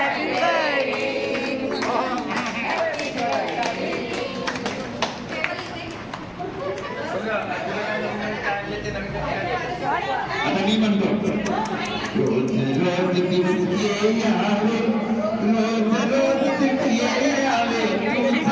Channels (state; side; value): identical; both; correlation 1.00